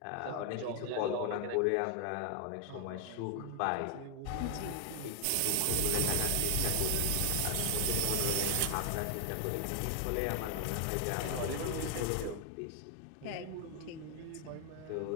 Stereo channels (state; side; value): different; both; correlation 0.00